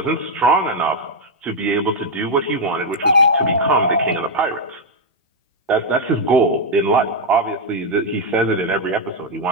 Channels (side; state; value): both; normal; correlation -0.01